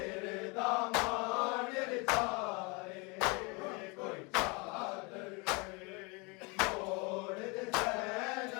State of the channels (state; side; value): quieter; right; 29.4 dB